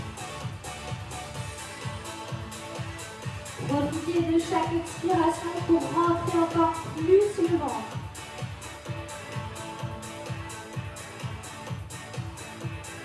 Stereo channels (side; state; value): both; identical; correlation 1.00